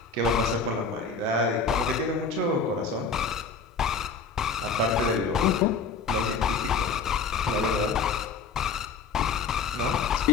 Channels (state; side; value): quieter; right; 4.9 dB